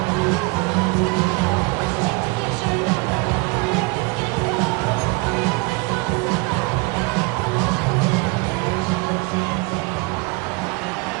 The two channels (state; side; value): quieter; left; 26.0 dB